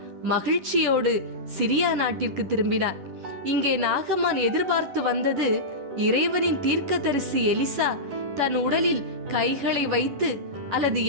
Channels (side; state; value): left; late; 11 ms